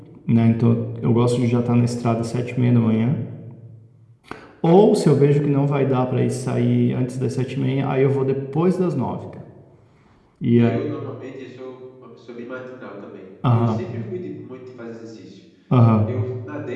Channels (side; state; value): both; identical; correlation 1.00